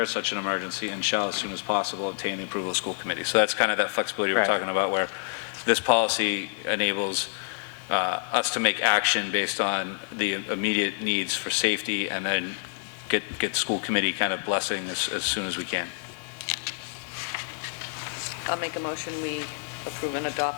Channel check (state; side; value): silent; right; 60 dB below the other